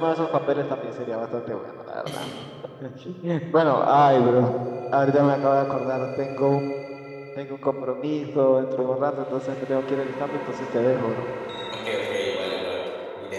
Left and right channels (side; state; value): both; identical; correlation 1.00